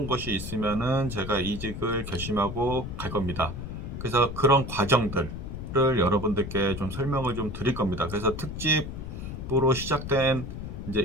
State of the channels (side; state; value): left; noise; rumble, 7 dB below the sound